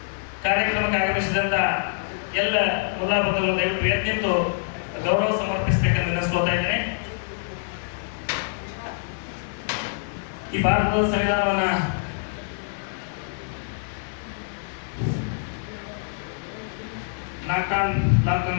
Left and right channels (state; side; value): silent; right; digital silence